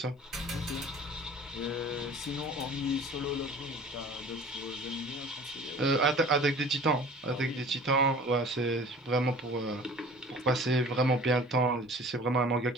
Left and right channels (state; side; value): normal; both; correlation 0.45